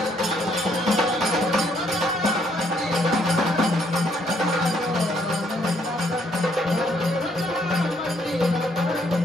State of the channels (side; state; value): both; normal; correlation 0.69